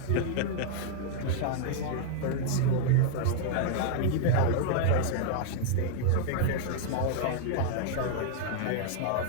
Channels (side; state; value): both; different; correlation -0.01